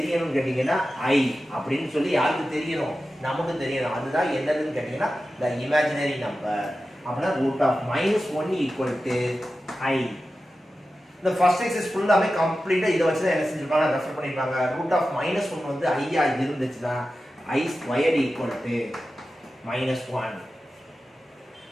கேட்டீங்கன்னா i அப்படின்னு சொல்லி யாருக்கு தெரியணும்? நமக்கு தெரியணும். அதுதான் என்னதுன்னு கேட்டீங்கன்னா the imaginary number. அப்படின்னா root of minus 1 equal to i. இந்த ஃபர்ஸ்ட் எக்ஸசைஸ் ஃபுல்லாமே கம்ப்ளீட்டா இத வச்சு தான் என்ன செஞ்சிருப்பாங்க? ரெஃபர் பண்ணிருப்பாங்க. root of minus 1 வந்து i ஆ இருந்துச்சுனா i squared equal to minus 1.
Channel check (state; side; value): normal; both; correlation 0.93